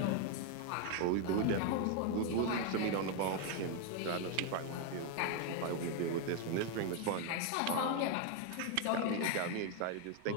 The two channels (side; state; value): both; different; correlation 0.00